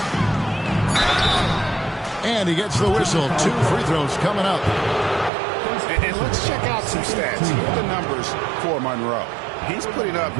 And he gets the whistle. 2 free throws coming up. And let's check out some stats. Here are the numbers for Monroe. He's putting up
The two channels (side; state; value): left; drops out; at 5.3 s